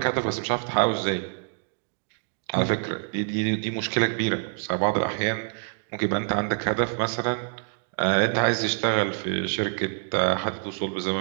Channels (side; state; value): left; silent; digital silence